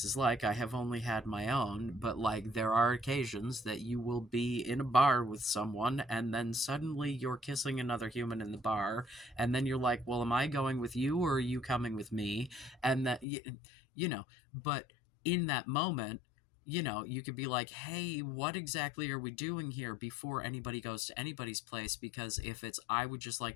is like. I have only had my own, but, like, there are occasions that you will be in a bar with someone and then suddenly you're kissing another human in the bar, and then you're like, "Well, am I going with you or are you coming with me?" And that you know, but in that moment, you could be like, "Hey, what exactly are we doing here?" before anybody goes to anybody's place, because if it's, "I would just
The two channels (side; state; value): right; drops out; at 13.2 s